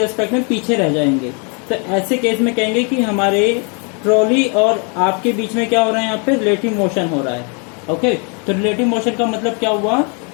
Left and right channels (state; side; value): quieter; right; 36.3 dB